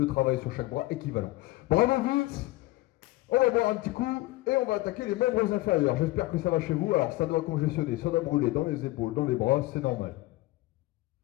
travail sur chaque bras équivalent. Bravo Vince! On va boire un petit coup et on va attaquer les membres inférieurs. J'espère que ça va chez vous. Alors ça doit congestionner, ça doit brûler dans les épaules, dans les bras, c'est normal.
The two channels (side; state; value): right; quieter; 19.1 dB